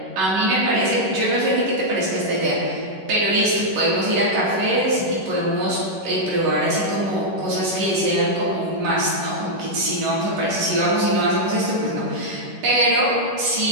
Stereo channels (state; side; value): late; left; 11 ms